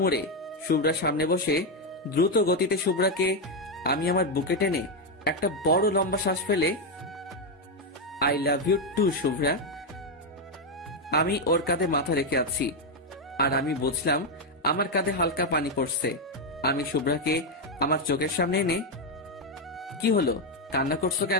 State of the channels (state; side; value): normal; both; correlation 0.04